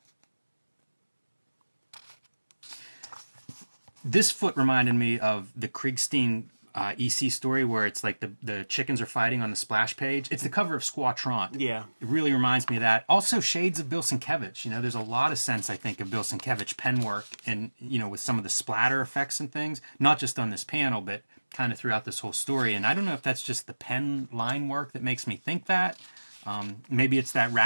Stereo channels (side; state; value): both; inverted; correlation -1.00